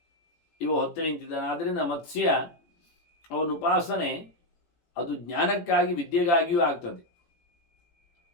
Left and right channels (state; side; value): late; right; 18 ms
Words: ಇವ ಹೊತ್ತು ನಿಂತಿದ್ದಾನೆ. ಆದ್ದರಿಂದ ಮತ್ಸ್ಯ ಅವನ ಉಪಾಸನೆ ಅದು ಜ್ಞಾನಕ್ಕಾಗಿ, ವಿದ್ಯೆಗಾಗಿಯೂ ಆಗ್ತದೆ.